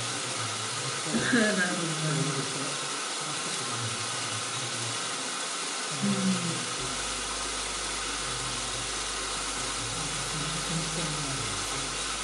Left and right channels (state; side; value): identical; both; correlation 1.00